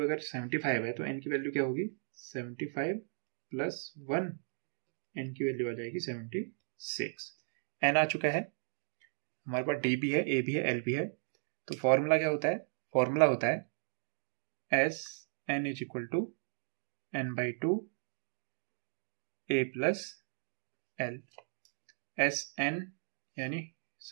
अगर 75 है तो n की वैल्यू क्या होगी 75 प्लस 1, n की वैल्यू आ जाएगी 76। n आ चुका है हमारे पास, d भी है, a भी है, l भी है। तो फॉर्मूला क्या होता है, फॉर्मूला होता है s n is equal to n/2 a plus l। S n यानी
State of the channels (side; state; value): left; silent; digital silence